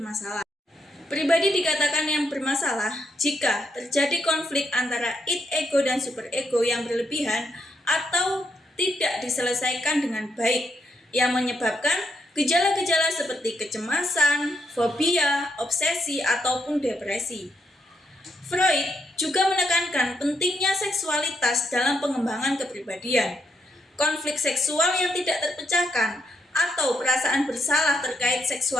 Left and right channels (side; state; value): both; normal; correlation 0.79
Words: Pribadi dikatakan yang bermasalah jika terjadi konflik antara id, ego, dan superego yang berlebihan atau tidak diselesaikan dengan baik, yang menyebabkan gejala-gejala seperti kecemasan, fobia, obsesi, ataupun depresi. Freud juga menekankan pentingnya seksualitas dalam pengembangan kepribadian. Konflik seksual yang tidak terpecahkan atau perasaan bersalah terkait